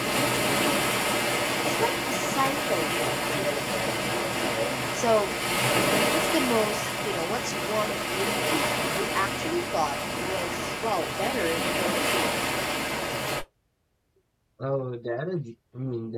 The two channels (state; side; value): identical; both; correlation 1.00